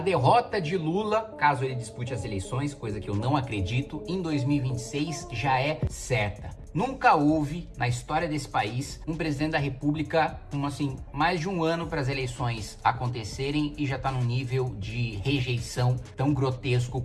derrota de Lula, caso ele dispute as eleições, coisa que eu não acredito, em 2026 já é certa. Nunca houve, na história desse país, um presidente da República com, mais de um ano para as eleições acontecerem e já tá num nível de rejeição tão grotesco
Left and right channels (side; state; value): both; identical; correlation 1.00